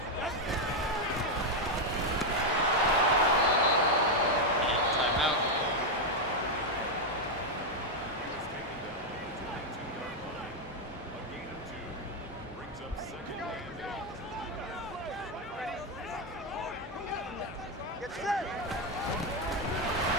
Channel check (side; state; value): both; normal; correlation 0.03